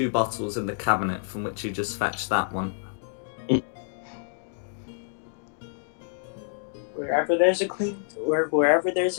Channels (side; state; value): right; silent; digital silence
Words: bottles in the cabinet from which you just fetched that one. Wherever there's a clean, or wherever there's